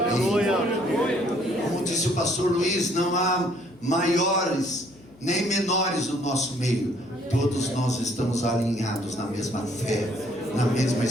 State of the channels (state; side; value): noise; left; hum, 26 dB below the sound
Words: Como disse o pastor Luiz, não há maiores nem menores no nosso meio. Todos nós estamos alinhados na mesma fé, na mesma